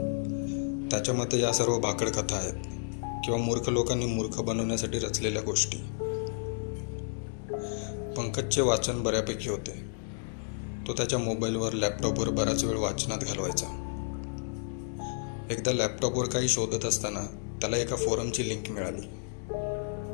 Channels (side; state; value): right; silent; digital silence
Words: त्याच्या मते या सर्व भाकड कथा आहेत किंवा मूर्ख लोकांनी मूर्ख बनवण्यासाठी रचलेल्या गोष्टी. पंकजचे वाचन बऱ्यापैकी होते. तो त्याच्या मोबाईलवर, लॅपटॉपवर बराच वेळ वाचनात घालवायचा. एकदा लॅपटॉपवर काही शोधत असताना त्याला एका फोरमची लिंक मिळाली.